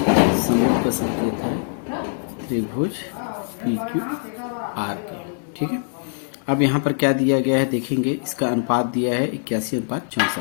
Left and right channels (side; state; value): right; silent; digital silence